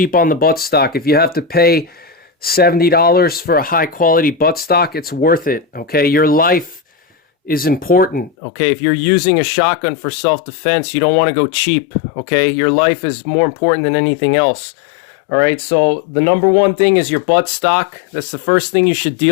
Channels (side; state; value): right; drops out; at 8.3 s